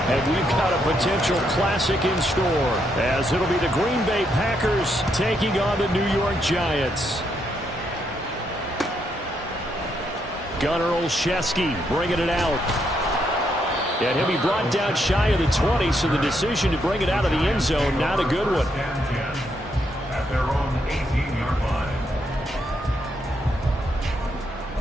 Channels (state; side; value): normal; both; correlation 0.77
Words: And we've got a potential classic in store, as it'll be the Green Bay Packers taking on the New York Giants. Gunnar Olszewski bringing it out. And he'll be brought down shy of the 20, so the decision to bring it out of the end zone, not a good one. At their own 18-yard line.